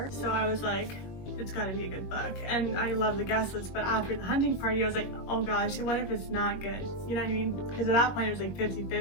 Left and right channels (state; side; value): late; right; 21 ms